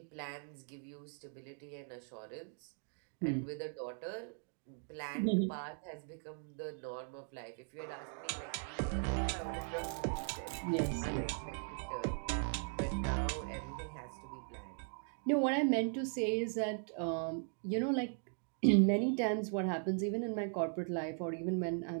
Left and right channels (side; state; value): left; silent; 52 dB below the other